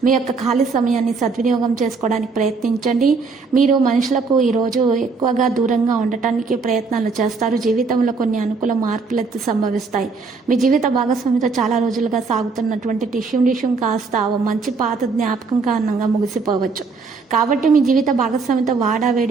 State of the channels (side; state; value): left; quieter; 4.5 dB